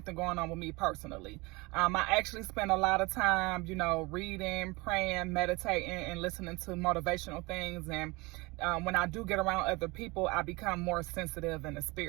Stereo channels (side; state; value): left; quieter; 24.6 dB